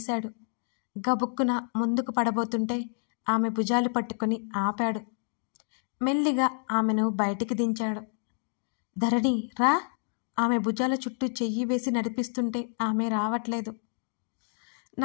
గబుక్కున ముందుకు పడబోతుంటే ఆమె భుజాలు పట్టుకొని ఆపాడు. మెల్లిగా ఆమెను బయటికి దించాడు. ధరణి రా. ఆమె భుజాల చుట్టూ చెయ్యి వేసి నడిపిస్తుంటే ఆమె రావట్లేదు.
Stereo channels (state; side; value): silent; right; 55 dB below the other